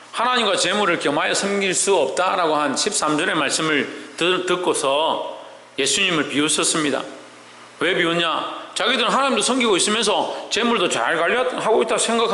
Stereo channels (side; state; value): both; identical; correlation 1.00